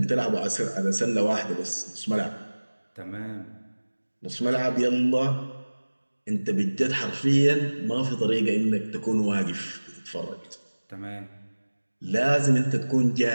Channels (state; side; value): inverted; both; correlation -1.00